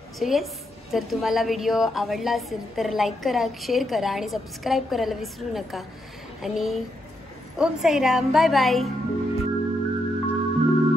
सो येस जर तुम्हाला व्हिडिओ आवडला असेल तर लाईक करा, शेअर करा आणि सबस्क्राईब करायला विसरू नका. आणि ओम साईराम. Bye bye.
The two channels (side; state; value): both; normal; correlation 0.81